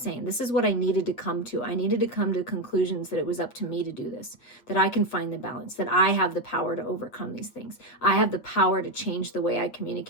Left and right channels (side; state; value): right; late; 8.6 ms